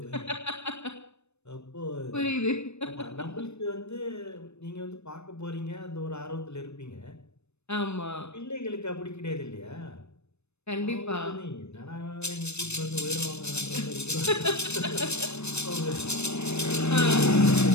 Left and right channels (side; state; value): right; late; 0.81 ms